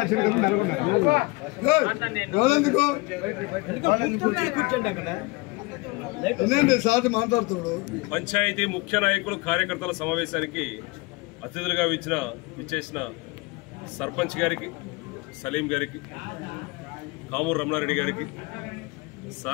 పంచాయతీ ముఖ్య నాయకులు కార్యకర్తల సమావేశానికి అతిథులుగా విచ్చేసిన సర్పంచ్ గారికి, సలీం గారికి, కామూరు రమణారెడ్డి గారికి,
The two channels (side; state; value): right; quieter; 24.3 dB